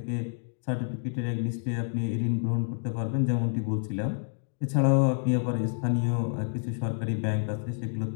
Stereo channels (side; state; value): right; silent; digital silence